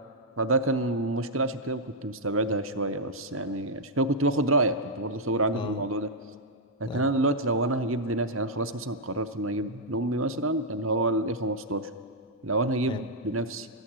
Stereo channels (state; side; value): normal; both; correlation -0.05